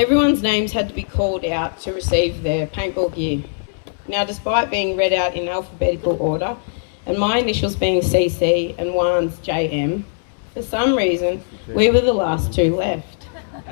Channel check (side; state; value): right; silent; 66 dB below the other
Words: names had to be called out to receive their paintball gear. Now, despite being read out in alphabetical order, and my initials being CC and Juan's JM, for some reason, we were the last two left.